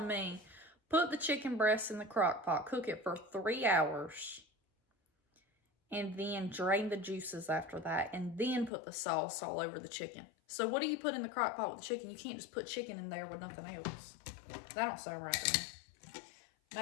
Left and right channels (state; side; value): drops out; right; at 8.7 s